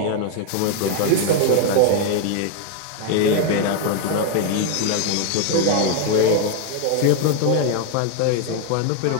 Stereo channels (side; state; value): both; different; correlation 0.01